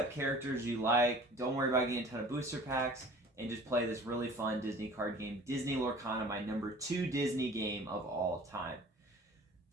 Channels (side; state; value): both; normal; correlation 0.46